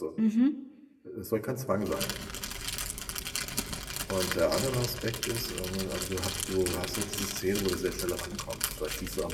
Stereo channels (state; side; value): identical; both; correlation 1.00